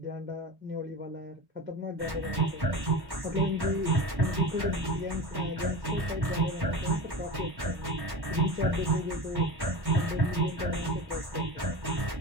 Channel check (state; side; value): late; left; 1.1 ms